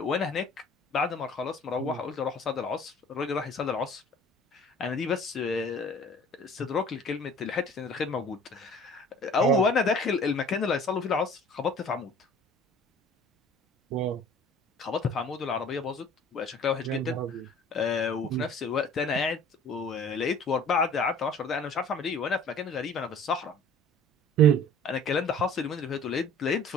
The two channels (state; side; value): normal; both; correlation 0.48